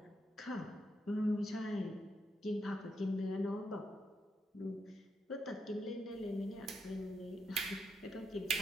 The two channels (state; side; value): normal; both; correlation 0.81